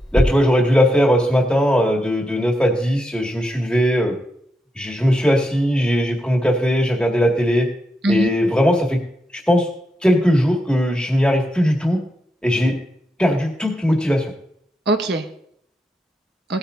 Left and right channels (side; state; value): both; normal; correlation 0.84